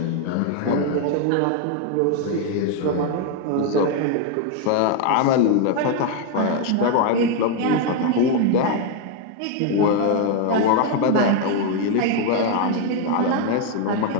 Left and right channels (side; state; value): both; different; correlation 0.01